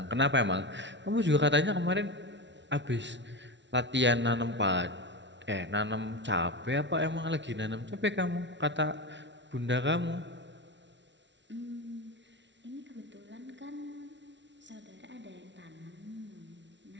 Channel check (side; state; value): left; late; 0.52 ms